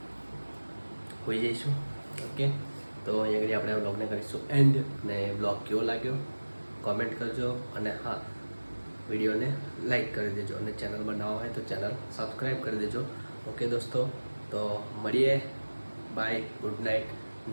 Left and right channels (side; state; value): both; inverted; correlation -1.00